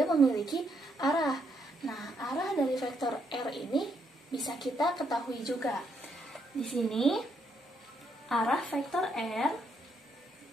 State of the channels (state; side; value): normal; both; correlation 0.75